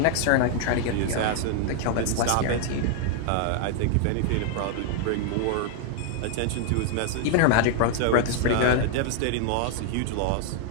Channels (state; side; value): different; both; correlation 0.00